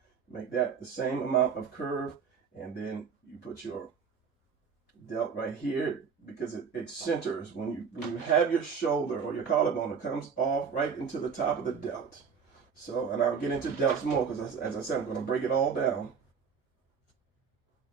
make that the same amount of curve, and then you put your delt right here, because it centers. When you have your shoulder or your collarbone, it comes off right into the top of the delt. So, and I'll get into delts more, because as I said, I'm going to break it all down.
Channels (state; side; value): quieter; left; 6.3 dB